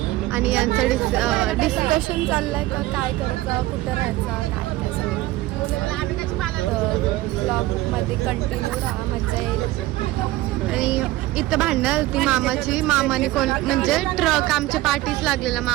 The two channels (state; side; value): quieter; left; 17.2 dB